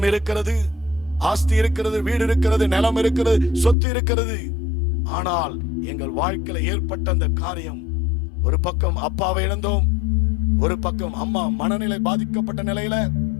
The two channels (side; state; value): right; drops out; at 3.8 s